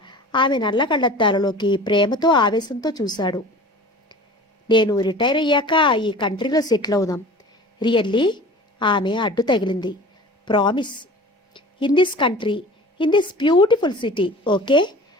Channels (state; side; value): normal; both; correlation 0.41